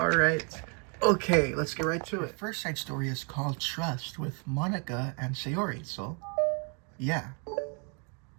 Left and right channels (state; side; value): quieter; left; 36.3 dB